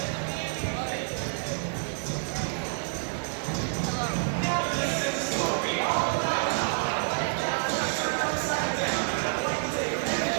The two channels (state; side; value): silent; left; digital silence